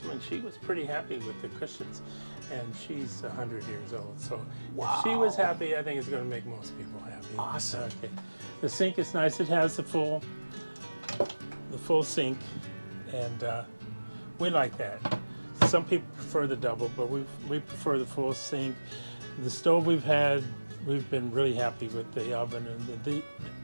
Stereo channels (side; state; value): both; inverted; correlation -1.00